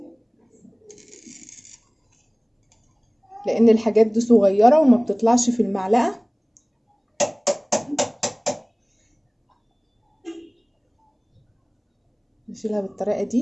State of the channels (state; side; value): identical; both; correlation 1.00